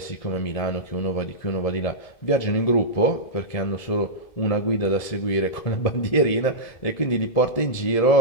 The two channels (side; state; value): right; late; 1.7 ms